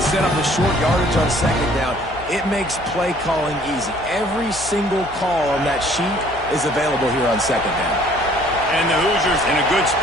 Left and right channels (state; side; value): noise; left; hum, 17 dB below the sound